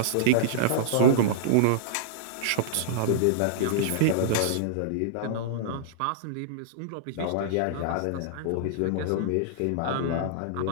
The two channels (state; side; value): different; both; correlation -0.02